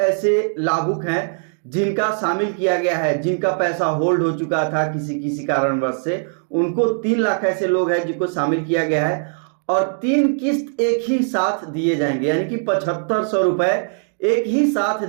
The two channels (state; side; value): silent; left; digital silence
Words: ऐसे लाभुक हैं जिनका शामिल किया गया है, जिनका पैसा होल्ड हो चुका था किसी किसी कारणवश से, उनको 3 लाख ऐसे लोग हैं जिनको शामिल किया गया है और 3 किस्त एक ही साथ दिए जाएंगे, यानी कि 7500 रुपए एक ही साथ